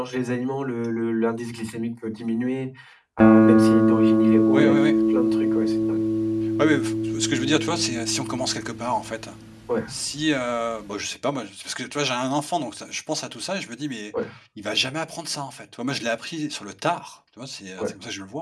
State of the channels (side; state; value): both; identical; correlation 1.00